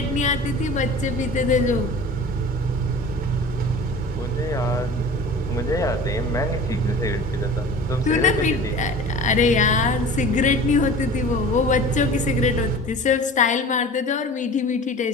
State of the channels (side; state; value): both; normal; correlation 0.39